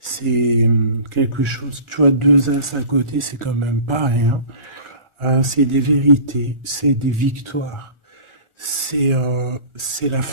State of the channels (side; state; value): left; late; 1.4 ms